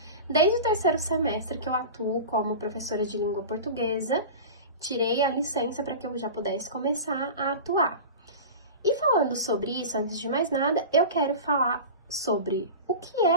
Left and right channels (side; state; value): both; inverted; correlation -0.30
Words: Desde o terceiro semestre que eu atuo como professora de língua portuguesa, tirei a licença para que eu já pudesse começar a atuar. E falando sobre isso, antes de mais nada, eu quero falar sobre o que